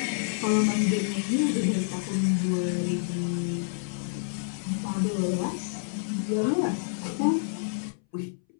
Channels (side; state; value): right; silent; 59 dB below the other